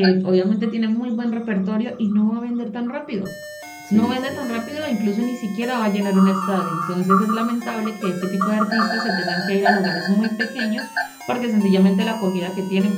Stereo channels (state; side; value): identical; both; correlation 1.00